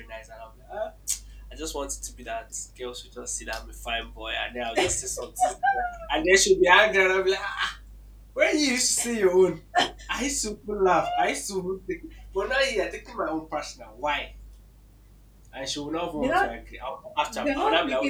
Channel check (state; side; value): identical; both; correlation 1.00